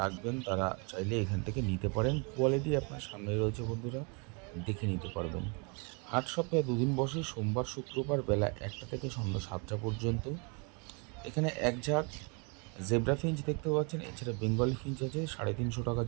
রাখবেন, তারা চাইলে এখান থেকে নিতে পারেন। কোয়ালিটি আপনার সামনে রয়েছে বন্ধুরা, দেখে নিতে পারবেন। হাট সপ্তাহে দুদিন বসে, সোমবার শুক্রবার বেলা 1টা থেকে সন্ধ্যা 7টা পর্যন্ত। এখানে এক ঝাঁক জেব্রা ফিঞ্চ দেখতে পাচ্ছেন, এছাড়া বেঙ্গলি ফিঞ্চ আছে, 350 টাকা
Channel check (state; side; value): quieter; left; 33.9 dB